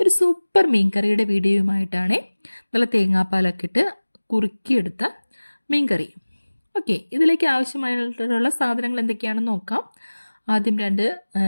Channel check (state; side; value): inverted; both; correlation -1.00